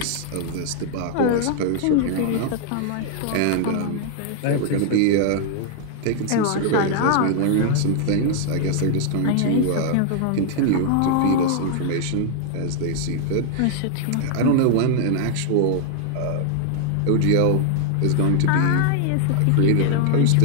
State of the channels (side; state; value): both; different; correlation 0.00